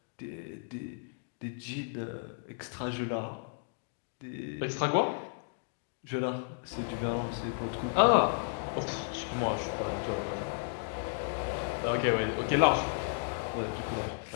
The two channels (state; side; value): silent; right; digital silence